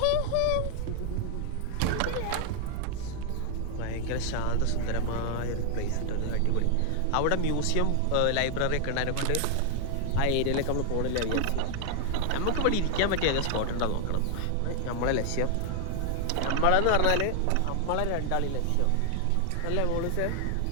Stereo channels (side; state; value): both; different; correlation 0.00